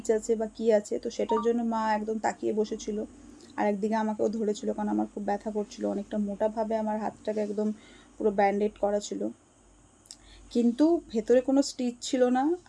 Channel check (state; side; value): identical; both; correlation 1.00